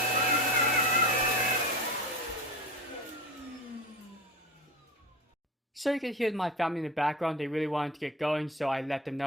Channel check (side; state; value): both; normal; correlation 0.31